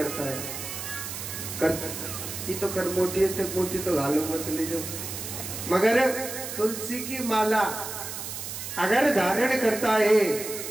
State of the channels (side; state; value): right; noise; hiss, 7 dB below the sound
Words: है, ये तो करमोटी है, मोटी तो गालो मत ले जाओ, मगर तुलसी की माला अगर धारण करता है